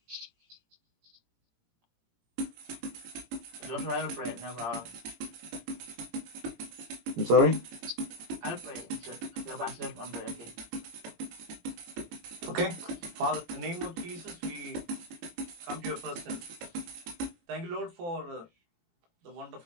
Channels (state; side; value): late; left; 18 ms